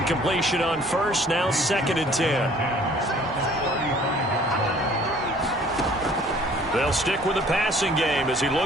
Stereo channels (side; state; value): both; normal; correlation 0.55